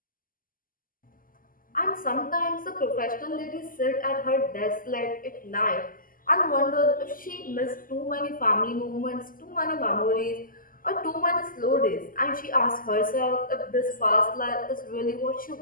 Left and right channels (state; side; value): late; right; 0.41 ms